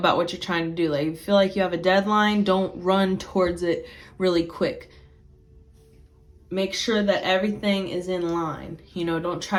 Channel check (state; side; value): identical; both; correlation 1.00